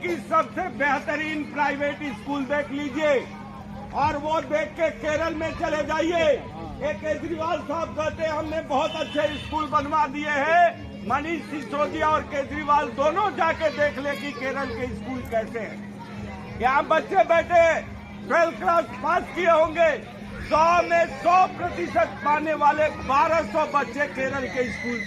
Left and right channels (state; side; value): identical; both; correlation 1.00